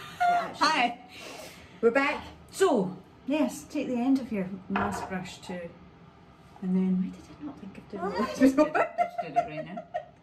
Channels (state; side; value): identical; both; correlation 1.00